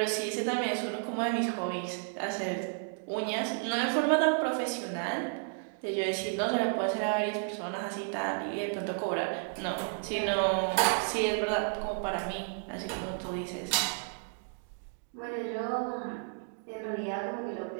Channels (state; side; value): silent; left; 56 dB below the other